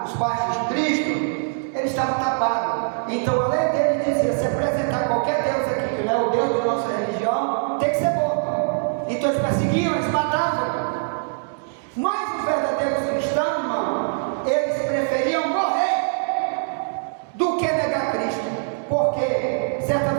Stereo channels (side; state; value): left; silent; digital silence